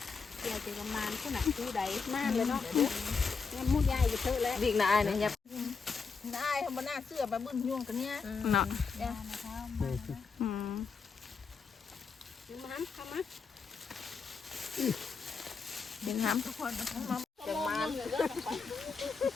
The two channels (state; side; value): quieter; right; 5.1 dB